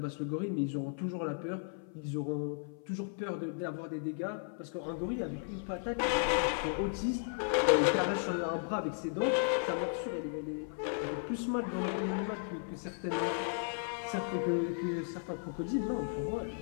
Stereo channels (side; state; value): right; silent; 54 dB below the other